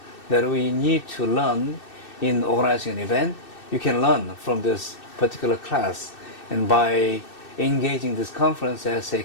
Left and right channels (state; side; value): late; right; 2.6 ms